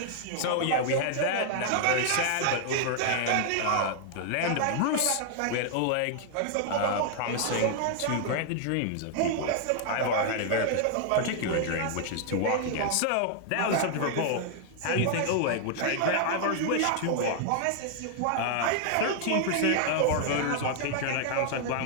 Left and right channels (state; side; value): different; both; correlation 0.00